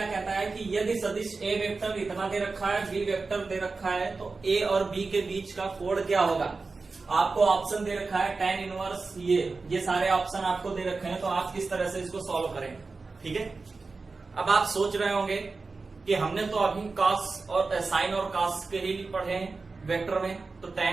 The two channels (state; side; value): quieter; left; 4.0 dB